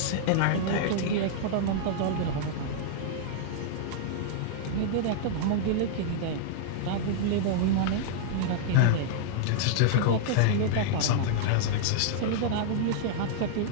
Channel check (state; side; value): different; both; correlation -0.01